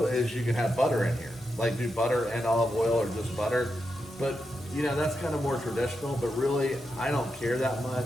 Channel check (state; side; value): normal; both; correlation 0.87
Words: is you can have butter in here. Like do butter and olive oil or just butter. But, that's kind of more traditional. But really, I don't care that